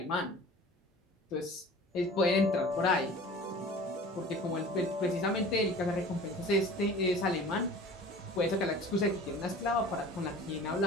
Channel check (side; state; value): both; normal; correlation 0.42